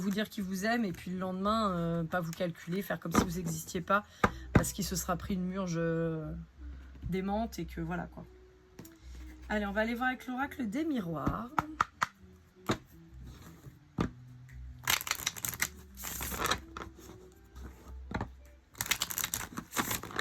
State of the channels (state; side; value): identical; both; correlation 1.00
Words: dire qu'il vous aime, et puis le lendemain, pas vous calculer, faire comme si vous n'existiez pas, parce qu'il se sera pris une murge démente, et que voilà, quoi. Allez, on va aller voir avec l'oracle des miroirs.